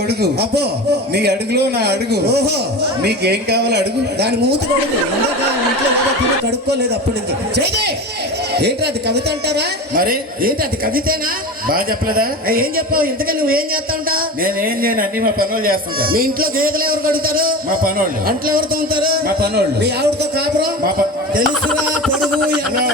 అబ్బో నీ అడుగులో నా అడుగు. ఓహో, నీకేం కావాలో అడుగు. దాని మూతి కడుగు. ఇందాక ఇంట్లో ఏదో తిని కడుక్కోలేదు అప్పటి నుంచి. చేదే ఏంటి అది కవిత అంటారా? మరి ఏంటి అది కవితేనా? బాగా చెప్పలేదా? ఏం చెప్పావు? ఇంతకీ నువ్వేం చేస్తా ఉంటావు? నేనేం చేయను, అన్ని మా పనులు చేస్తుంటా. మీ ఇంట్లో గేదెలు ఎవరు కడుగుతారు? మా పనోళ్ళు. అంట్లో ఎవరు తోముతారు? మా పనోళ్ళు. మీ ఆవిడతో కాపురం? మా తెలుసురా పొడుగు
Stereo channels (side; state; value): both; normal; correlation 0.29